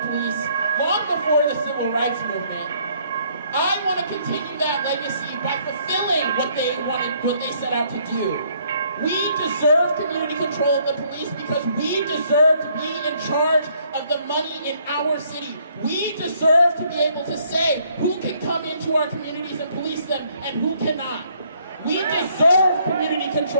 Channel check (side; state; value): both; inverted; correlation -0.66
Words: long before the civil rights movement, I want to continue that legacy by fulfilling what they set out to do. We deserve community control of the police because we deserve to be in charge of the money in our city. We deserve to be able to say who can come into our communities and police them and who cannot. We deserve community